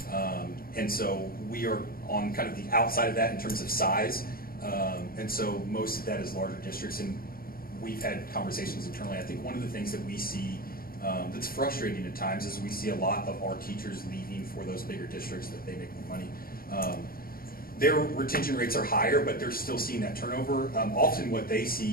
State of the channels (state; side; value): late; right; 0.43 ms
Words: and so we are on kind of the outside of that in terms of size, and so most of that is larger districts, and we've had conversations internally. I think one of the things that we see that's frustrating at times is we see a lot of our teachers leaving for those bigger districts that they make more money. Their retention rates are higher, but they're still seeing that turnover. Often what they